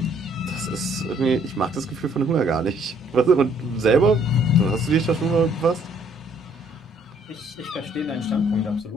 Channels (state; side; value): normal; both; correlation 0.63